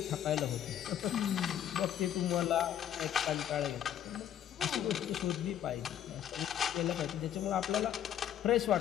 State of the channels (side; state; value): right; quieter; 10.3 dB